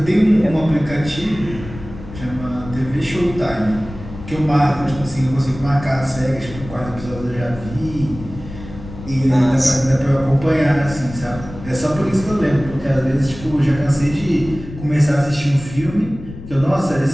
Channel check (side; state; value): left; noise; rumble, 13 dB below the sound